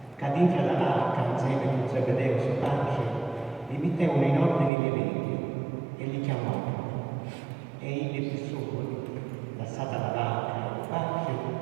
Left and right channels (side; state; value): left; drops out; at 4.7 s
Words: cadendo dalla barca insieme con Zebedeo suo padre, li mettevano in ordine le reti e li chiamavano. E egli più sopra, lasciata la barca e il padre,